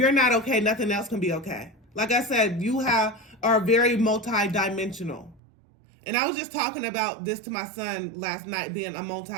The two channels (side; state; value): left; drops out; at 5.4 s